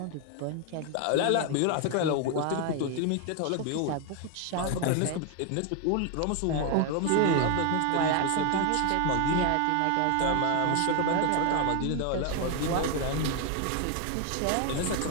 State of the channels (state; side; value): different; both; correlation 0.01